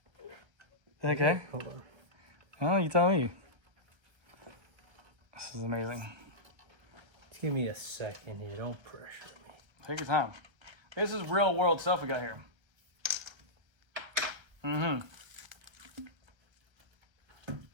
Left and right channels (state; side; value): late; left; 1.3 ms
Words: Okay. Hold on. Oh, you tell me. This is amazing. Just give me a second here. Don't pressure me. Take your time. This is real world stuff we got here.